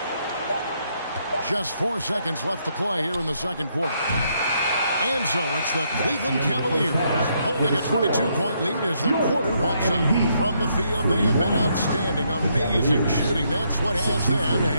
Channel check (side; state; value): both; inverted; correlation -0.74